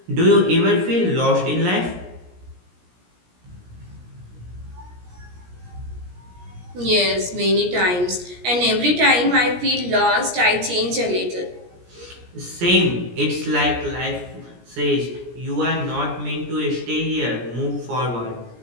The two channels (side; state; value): left; late; 17 ms